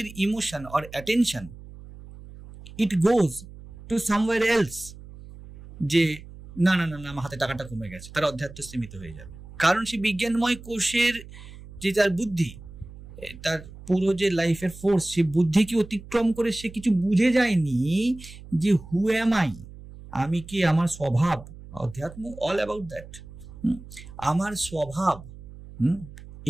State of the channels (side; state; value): right; noise; hum, 17 dB below the sound